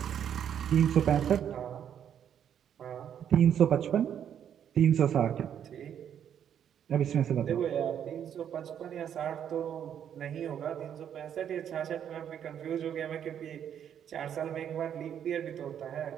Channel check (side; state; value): left; quieter; 9.1 dB